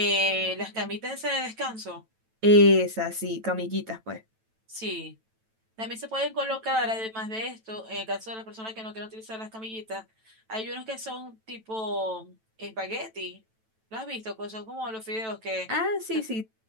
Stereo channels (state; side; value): late; left; 9.1 ms